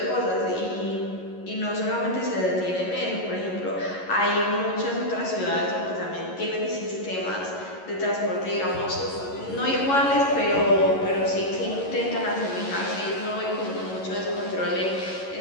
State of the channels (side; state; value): right; late; 11 ms